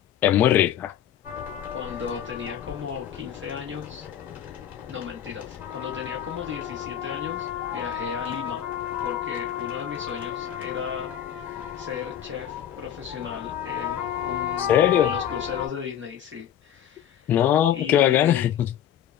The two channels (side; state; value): right; quieter; 10.1 dB